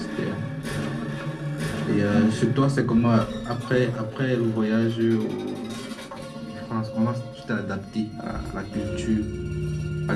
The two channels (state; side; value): identical; both; correlation 1.00